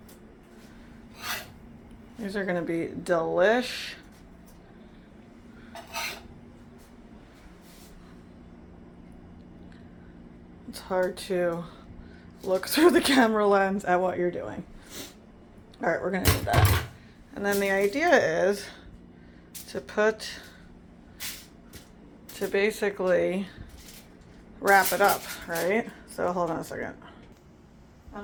These are gonna be delish. It's hard to look through the camera lens at what you're doing. All right, we're gonna do that. And then the idea is to basically wrap it up, right? So hold on a second.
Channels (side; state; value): both; identical; correlation 1.00